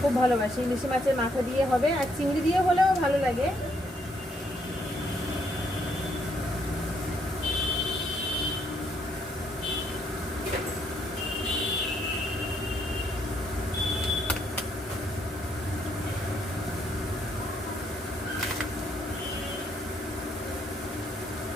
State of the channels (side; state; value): both; normal; correlation 0.72